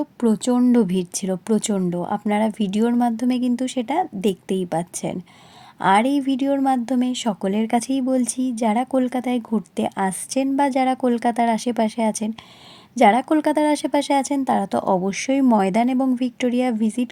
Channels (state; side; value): identical; both; correlation 1.00